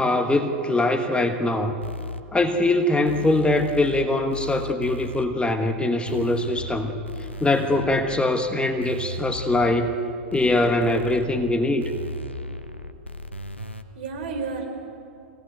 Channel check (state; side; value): normal; both; correlation 0.59